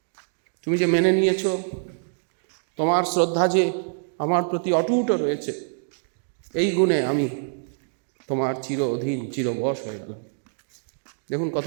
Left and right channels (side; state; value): left; silent; digital silence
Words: তুমি যে মেনে নিয়েছো, তোমার শ্রদ্ধা যে আমার প্রতি অটুট রয়েছে, এই গুণে আমি তোমার চির অধীন, চিরবশ হয়ে গেলাম। দেখুন কত